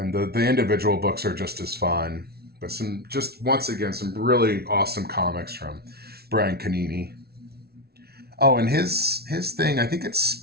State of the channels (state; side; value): late; left; 0.45 ms